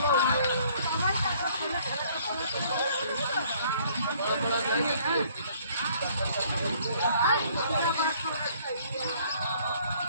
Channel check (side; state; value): both; inverted; correlation -0.60